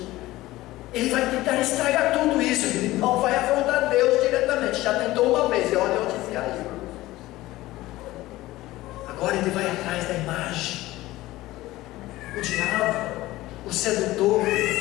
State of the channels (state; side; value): quieter; right; 17.4 dB